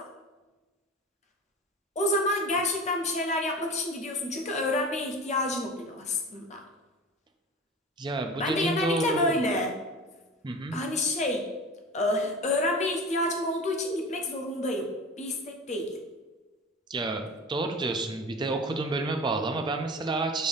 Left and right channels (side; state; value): both; normal; correlation 0.34